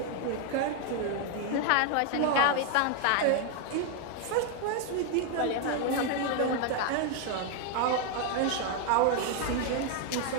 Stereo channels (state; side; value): different; both; correlation 0.00